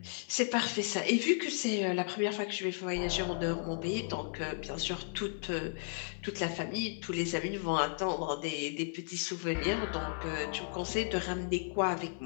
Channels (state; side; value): silent; right; 55 dB below the other